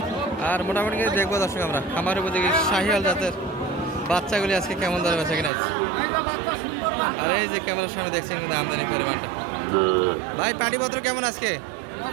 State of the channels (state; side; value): drops out; left; at 5.5 s